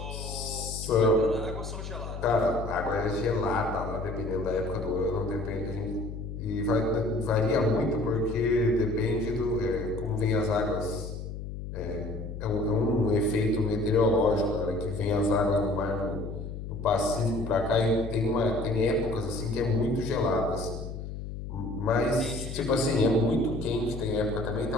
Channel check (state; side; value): noise; left; hum, 8 dB below the sound